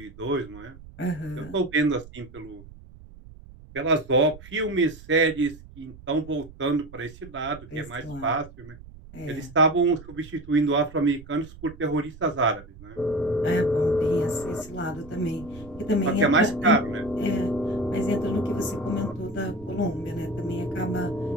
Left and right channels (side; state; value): right; noise; rumble, 18 dB below the sound